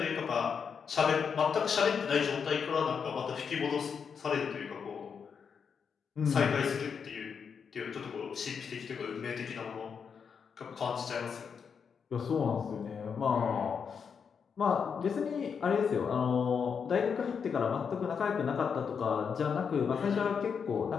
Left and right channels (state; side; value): quieter; right; 6.5 dB